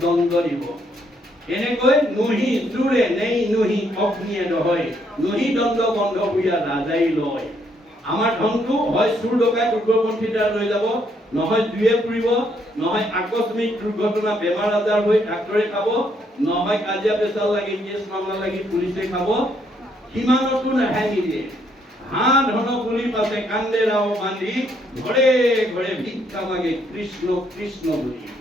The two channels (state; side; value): normal; both; correlation 0.72